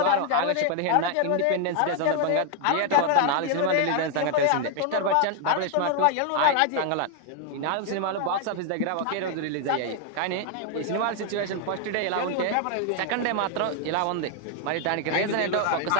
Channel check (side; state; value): both; different; correlation 0.00